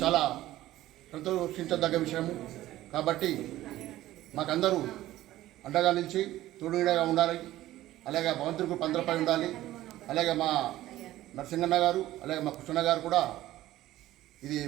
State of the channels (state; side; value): quieter; left; 15.1 dB